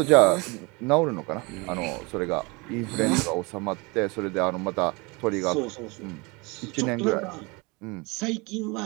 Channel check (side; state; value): left; quieter; 27.3 dB